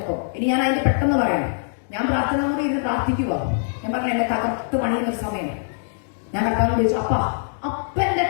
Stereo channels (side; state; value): right; silent; digital silence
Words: ഇനി ഞാൻ അതിന്റെ പെട്ടെന്ന് പറയാം. ഞാൻ പ്രാർത്ഥനാമുറി ഇരുന്ന് പ്രാർത്ഥിക്കുക. ഞാൻ പറഞ്ഞു, എന്നെ തകർത്ത് പണിയുന്നൊരു സമയം. ഞാൻ കർത്താവിനോട് ചോദിച്ചു, അപ്പന്റെ